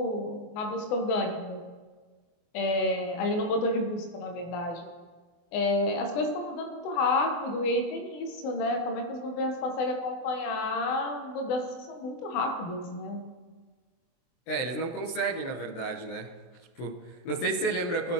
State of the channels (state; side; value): late; right; 23 ms